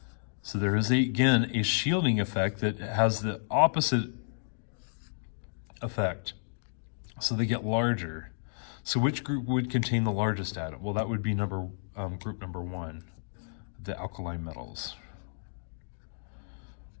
So there is, again, a shielding effect that has the opposite effect. So they get larger. So which group would contain the largest atom? Well, that would be group number 1, the alkali metals.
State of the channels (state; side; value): silent; right; digital silence